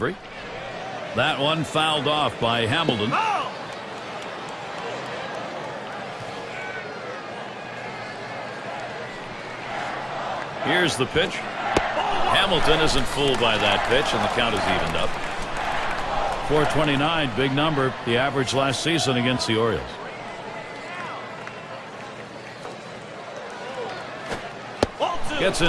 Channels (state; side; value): identical; both; correlation 1.00